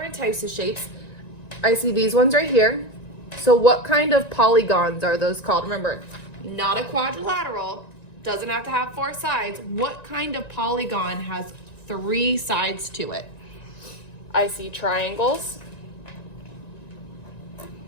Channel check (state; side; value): late; right; 1.9 ms